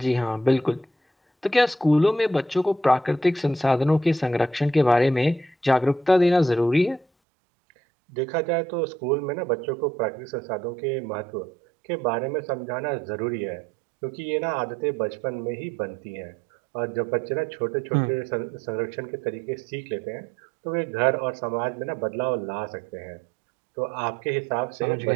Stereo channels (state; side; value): drops out; left; at 7.1 s